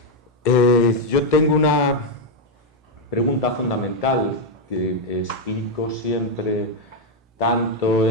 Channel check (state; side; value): normal; both; correlation 0.02